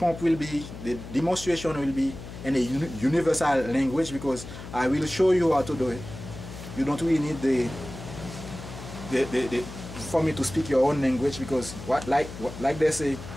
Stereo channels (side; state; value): left; noise; hum, 12 dB below the sound